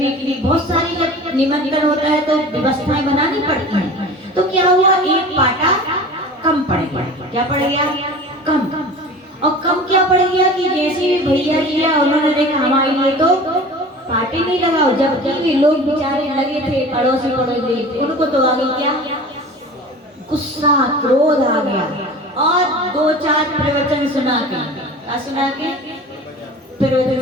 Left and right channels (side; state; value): both; normal; correlation 0.38